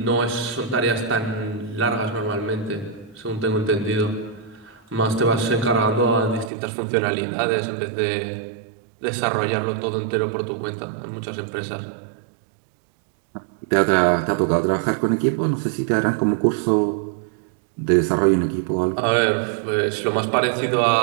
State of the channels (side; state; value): left; drops out; at 6.5 s